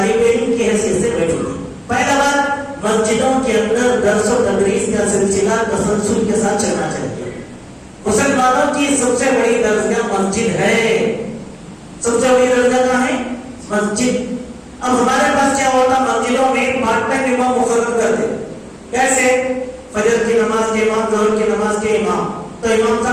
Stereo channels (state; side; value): identical; both; correlation 1.00